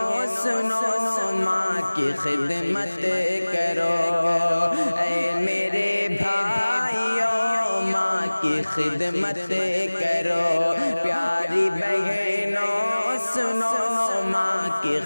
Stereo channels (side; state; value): both; inverted; correlation -1.00